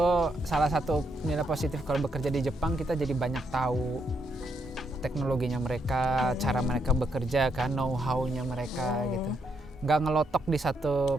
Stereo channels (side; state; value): both; normal; correlation 0.77